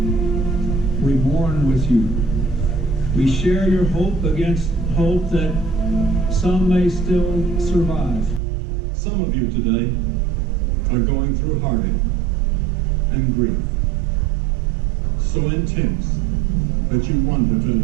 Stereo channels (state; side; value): drops out; left; at 8.4 s